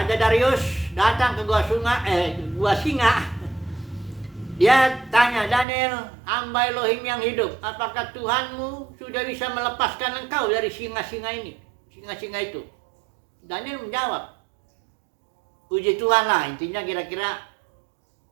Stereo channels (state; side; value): drops out; left; at 5.7 s